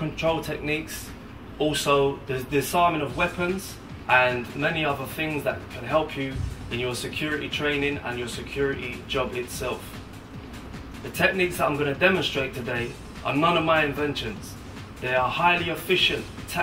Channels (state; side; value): identical; both; correlation 1.00